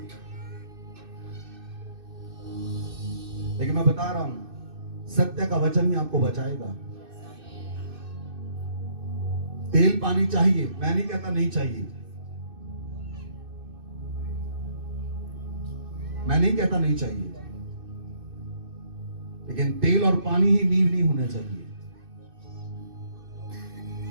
लेकिन मैं बता रहा हूं सत्य का वचन ही आपको बचाएगा। तेल पानी चाहिए, मैं नहीं कहता नहीं चाहिए, मैं नहीं कहता नहीं चाहिए, लेकिन तेल और पानी ही नींव नहीं होना चाहिए।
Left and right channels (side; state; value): left; late; 2.6 ms